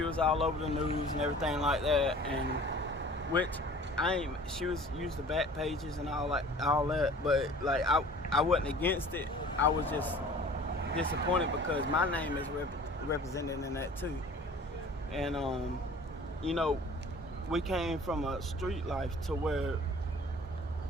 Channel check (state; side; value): normal; both; correlation 0.46